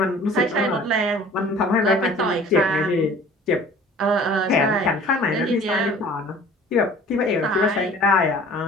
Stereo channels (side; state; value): both; normal; correlation 0.48